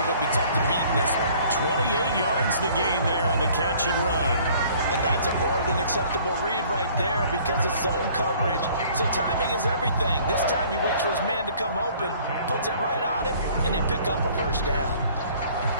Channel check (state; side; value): inverted; both; correlation -0.55